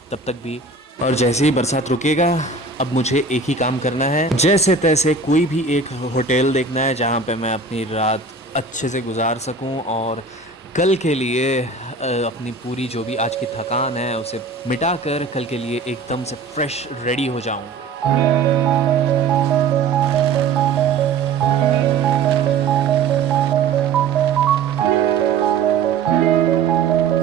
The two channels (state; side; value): quieter; left; 4.5 dB